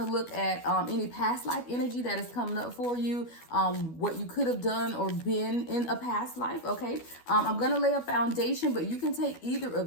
to look at any past life energy that is coming up for you, what you could have done or been in a past life. Okay, I'm going to lay a foundation, but you can take either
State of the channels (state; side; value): late; right; 12 ms